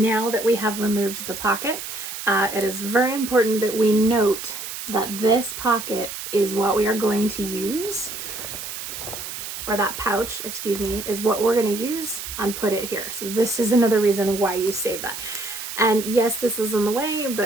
that we have removed the pocket, it is very important that we note that this pocket is what we are going to use, or that pouch, excuse me, is what we're going to use and put it here. So this is another reason why you save that. And yes, this is in the way,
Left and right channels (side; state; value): right; noise; hiss, 8 dB below the sound